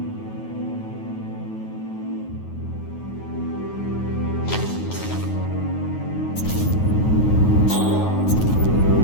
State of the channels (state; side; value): late; right; 9.4 ms